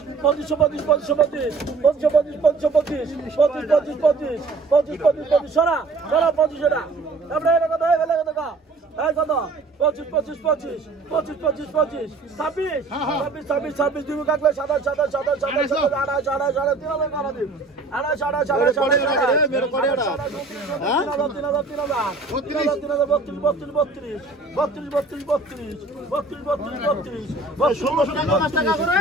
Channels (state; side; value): quieter; left; 3.7 dB